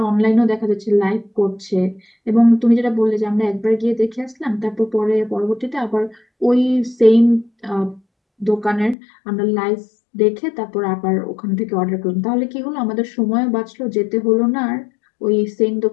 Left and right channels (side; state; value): right; drops out; at 9.0 s